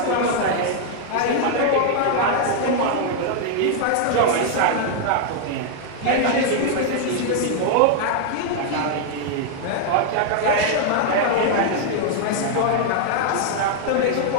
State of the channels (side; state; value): both; different; correlation 0.00